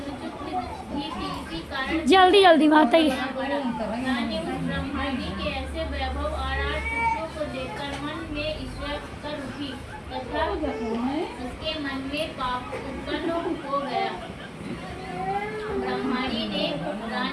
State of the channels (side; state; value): both; identical; correlation 1.00